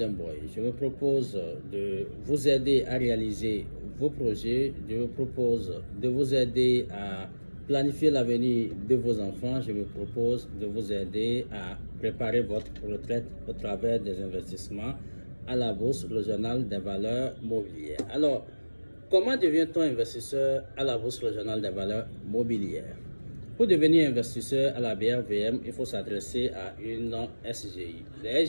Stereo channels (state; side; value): inverted; both; correlation -1.00